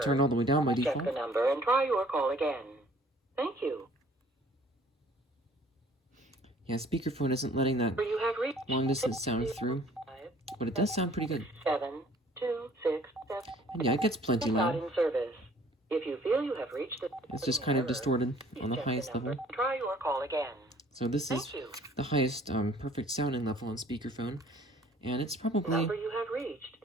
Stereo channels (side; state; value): both; normal; correlation 0.55